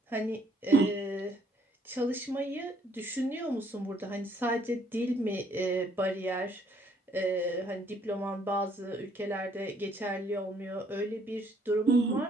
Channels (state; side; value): normal; both; correlation 0.65